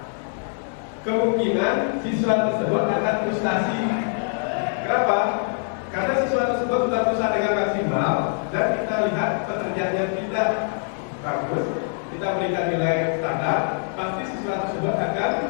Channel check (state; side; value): silent; right; 56 dB below the other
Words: Kemungkinan siswa tersebut akan frustasi. Kenapa? Karena siswa tersebut sudah berusaha dengan maksimal dan kita lihat pekerjaannya tidak bagus, kita berikan nilai standar, pasti siswa tersebut akan